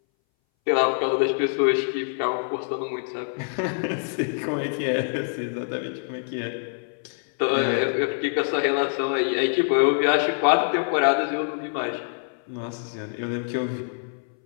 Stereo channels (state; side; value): silent; right; 60 dB below the other